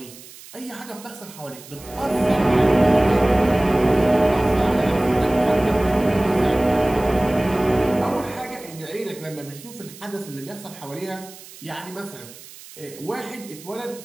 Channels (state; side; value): noise; right; hiss, 18 dB below the sound